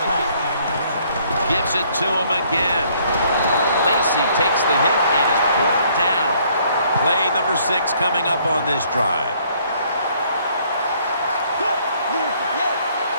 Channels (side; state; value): both; inverted; correlation -0.64